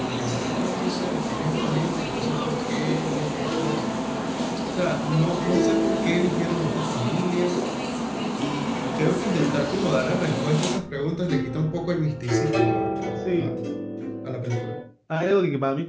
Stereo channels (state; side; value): identical; both; correlation 1.00